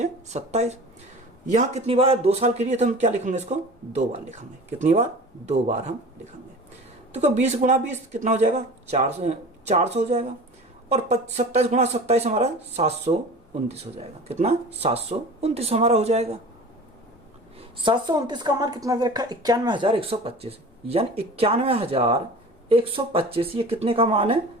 27। यहाँ कितनी बार, 2 साल के लिए तो हम क्या लिखेंगे, इसको 2 बार लिखेंगे। कितनी बार, 2 बार हम लिखेंगे। तो 20 गुणा 20 कितना हो जाएगा, 400 हो जाएगा, और 27 गुणा 27 हमारा 729 हो जाएगा। कितना, 729 हमारा हो जाएगा। 729 का मान कितना रखा, 91,125, यानी 91,125 ये कितने का मान है,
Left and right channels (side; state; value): both; normal; correlation 0.38